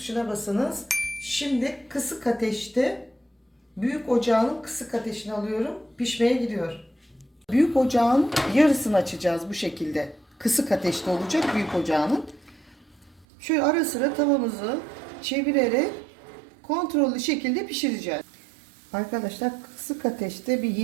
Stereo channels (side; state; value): left; drops out; at 13.2 s